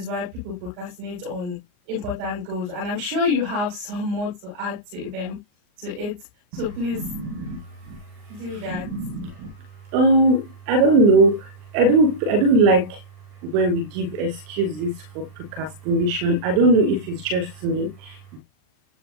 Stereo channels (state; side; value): late; left; 39 ms